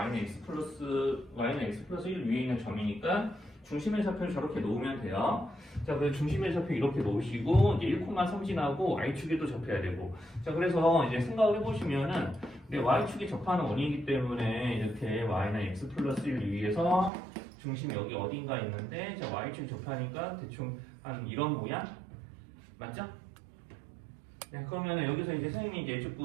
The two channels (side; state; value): left; drops out; at 17.1 s